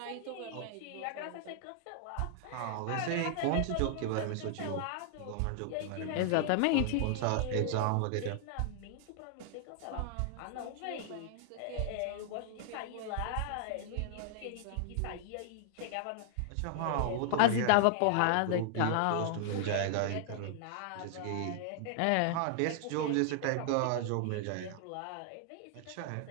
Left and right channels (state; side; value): different; both; correlation -0.01